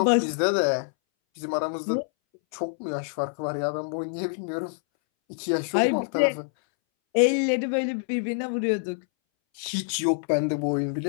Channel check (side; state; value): right; silent; 61 dB below the other